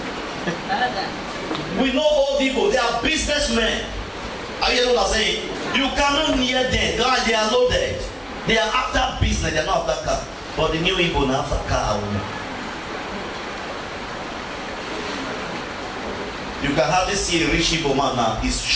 We know old people, they are businessmen. Are you hearing what I'm saying? You cannot near them. They are loaded. They are after business, they are not after car. But the new people are after car and women. You can hardly see a rich Igbo man now. He's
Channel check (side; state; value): both; identical; correlation 1.00